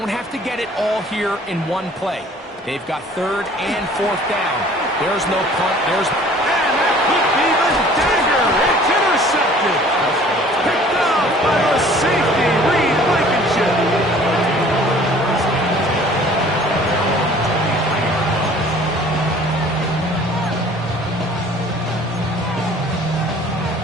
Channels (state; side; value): normal; both; correlation 0.51